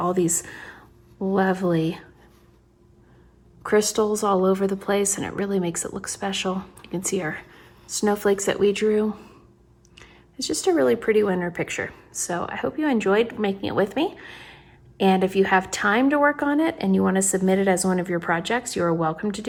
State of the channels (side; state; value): both; identical; correlation 1.00